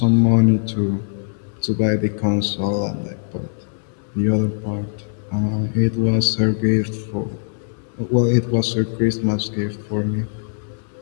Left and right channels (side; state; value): right; silent; 64 dB below the other